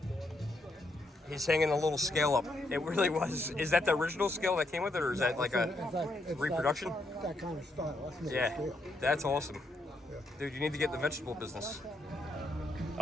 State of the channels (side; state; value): both; normal; correlation 0.78